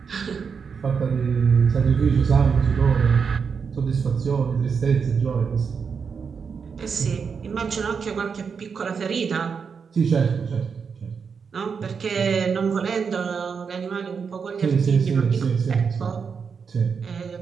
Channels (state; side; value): quieter; left; 6.0 dB